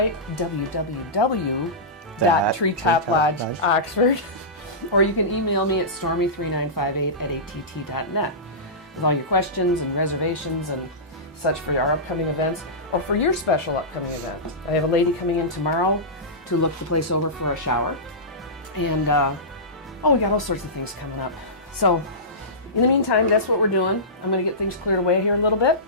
www.treetoplodge-oxford. Or you can email me at stormy3958@att.net with all your questions and reservations and such for our upcoming events or for your special upcoming event. I have a lady coming in tomorrow to look the place over for a shower. And, we got all sorts of things coming up. So, in the meantime, that's what we're doing. I'm going to get things cleared away here a little bit,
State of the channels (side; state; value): both; normal; correlation -0.18